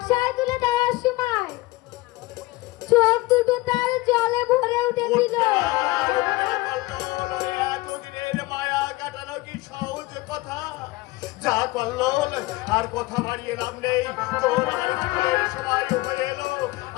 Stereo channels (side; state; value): right; quieter; 20.8 dB